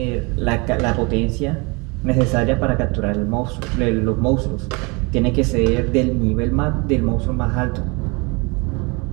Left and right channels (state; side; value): quieter; left; 28.4 dB